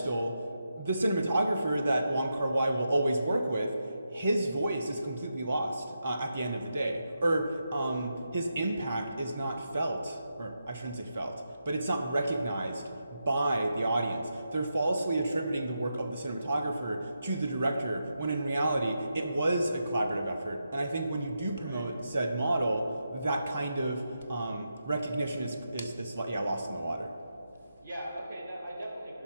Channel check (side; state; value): both; inverted; correlation -0.86